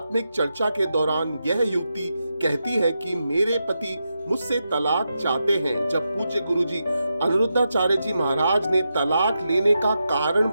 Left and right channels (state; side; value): inverted; both; correlation -0.87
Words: चर्चा के दौरान यह युवती कहती है कि मेरे पति मुझसे तलाक चाहते हैं। जब पूज्य गुरुजी अनिरुद्धाचार्य जी महाराज ने तलाक लेने का कारण